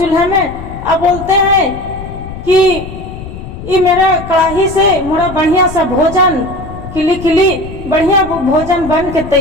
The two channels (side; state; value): left; noise; rumble, 12 dB below the sound